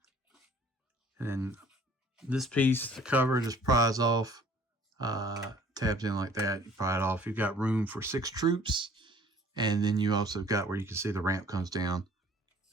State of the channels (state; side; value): normal; both; correlation 0.53